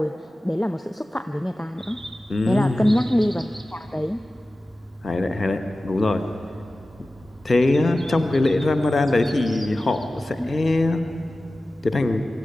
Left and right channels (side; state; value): both; normal; correlation 0.96